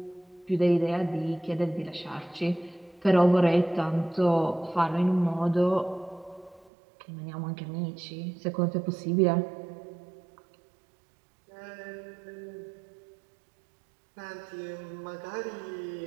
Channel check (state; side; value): drops out; left; at 6.7 s